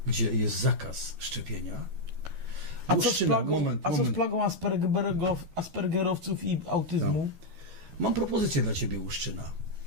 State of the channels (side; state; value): left; late; 12 ms